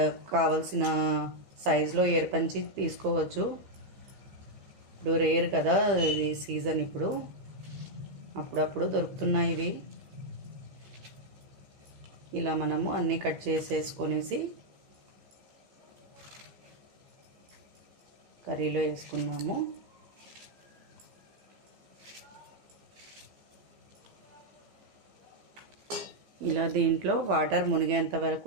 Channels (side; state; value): left; late; 15 ms